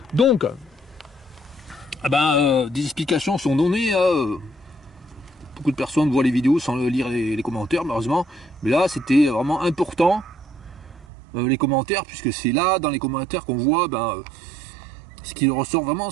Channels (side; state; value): left; drops out; at 11.1 s